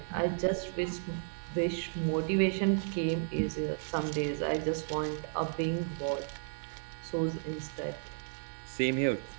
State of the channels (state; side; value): silent; left; 55 dB below the other